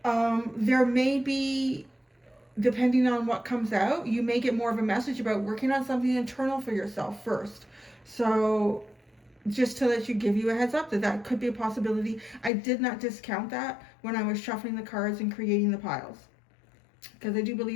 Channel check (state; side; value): drops out; right; at 12.5 s